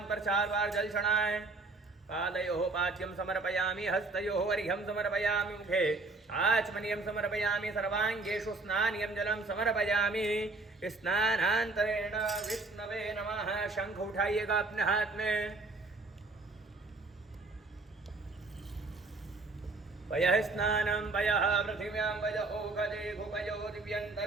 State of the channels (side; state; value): left; quieter; 3.5 dB